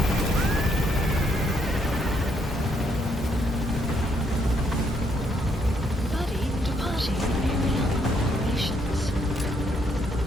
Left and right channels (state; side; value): normal; both; correlation 0.73